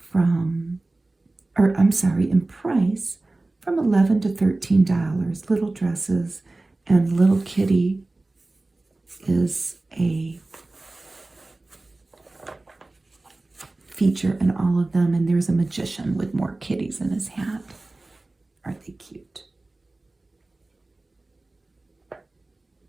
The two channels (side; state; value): left; quieter; 3.0 dB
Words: in price from $11 to $13. Little dresses, and little kitty is a feature in all of them, and there's a magician with more kitties in his hat. Aren't they cute?